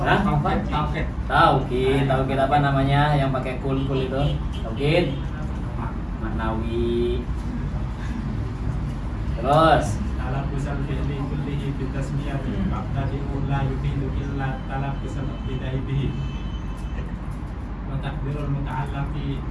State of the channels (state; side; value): identical; both; correlation 1.00